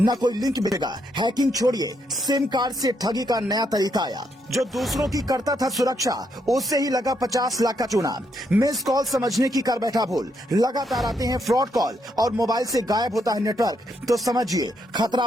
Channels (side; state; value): both; normal; correlation 0.77